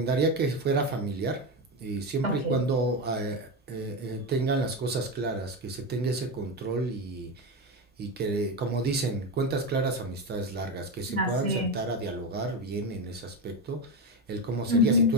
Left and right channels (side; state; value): both; normal; correlation 0.16